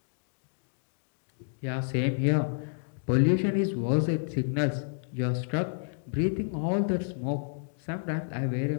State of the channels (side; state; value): right; silent; digital silence